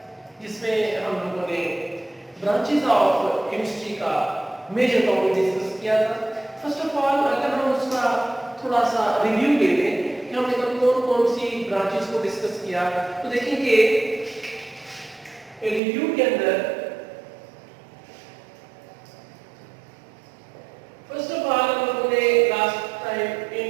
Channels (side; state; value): left; drops out; at 15.8 s